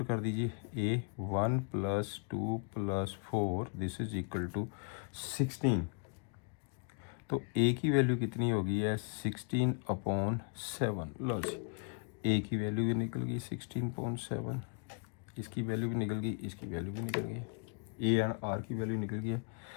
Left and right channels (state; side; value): quieter; right; 38.7 dB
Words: कर दीजिए, A 1 plus 2 plus 4 this is equal to 16, तो ए की वैल्यू कितनी होगी है, 16/7, लो जी ए की वैल्यू भी निकल गई 16.7, इसकी वैल्यू भी निकल गई, इसकी वैल्यू भी निकल गई, ए एंड आर की वैल्यू निकल गई है।